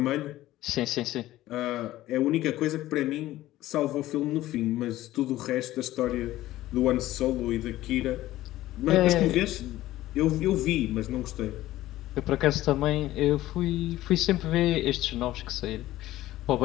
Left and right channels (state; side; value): quieter; right; 15.4 dB